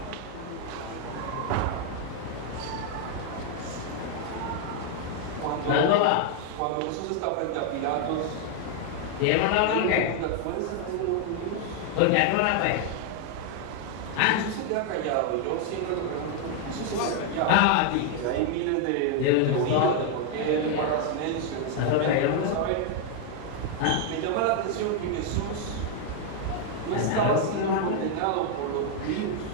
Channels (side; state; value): both; different; correlation 0.00